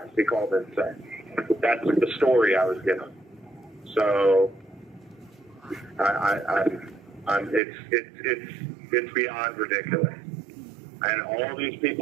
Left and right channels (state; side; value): drops out; left; at 7.6 s